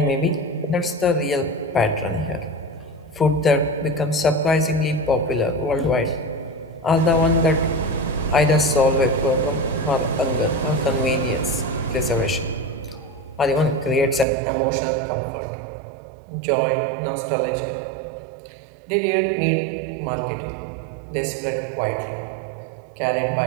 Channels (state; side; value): drops out; left; at 14.2 s